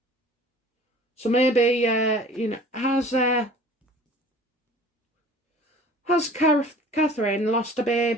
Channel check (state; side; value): normal; both; correlation 0.46